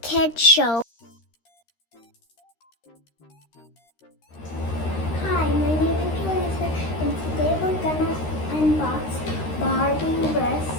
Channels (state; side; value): late; right; 13 ms